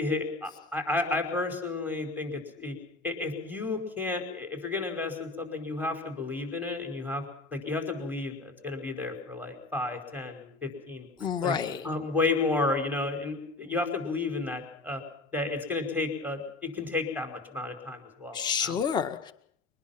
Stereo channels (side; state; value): right; quieter; 3.3 dB